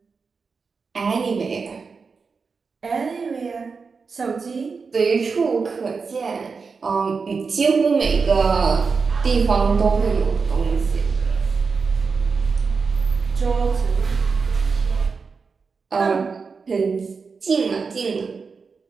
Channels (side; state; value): left; quieter; 5.0 dB